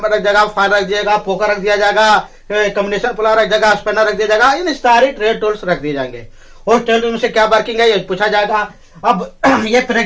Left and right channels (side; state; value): both; identical; correlation 1.00